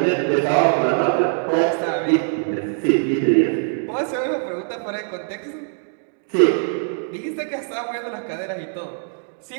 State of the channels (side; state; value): left; silent; digital silence